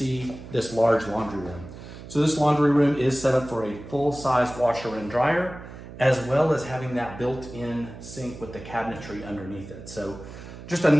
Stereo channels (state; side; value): noise; right; hum, 14 dB below the sound